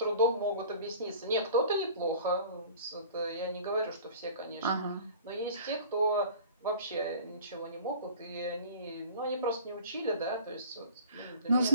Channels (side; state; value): both; inverted; correlation -0.44